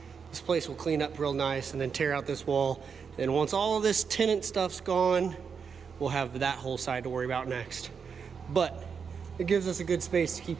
This place will clean up real nice, and then tear out this wall. And once all of this tenant stuff's gone, we'll have that whole side to worry about next. But it gives us a good space to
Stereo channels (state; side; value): quieter; left; 6.2 dB